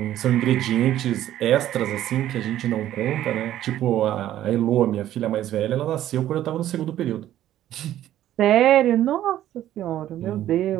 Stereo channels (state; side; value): quieter; left; 12.6 dB